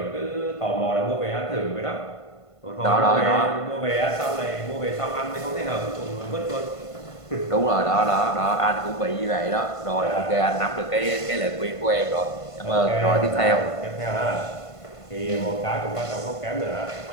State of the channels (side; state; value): right; late; 1.5 ms